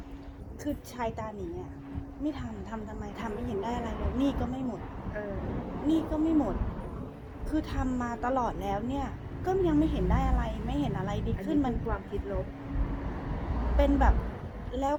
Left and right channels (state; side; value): identical; both; correlation 1.00